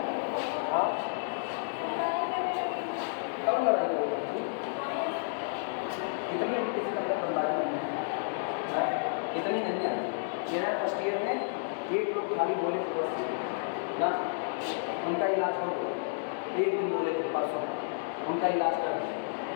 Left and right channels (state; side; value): silent; right; 57 dB below the other